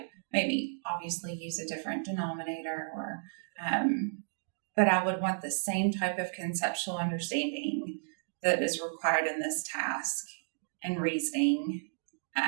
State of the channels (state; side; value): silent; left; digital silence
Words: maybe obviously use a different denominator, but I would want the same type of conceptual understanding that is required in this task and reasoning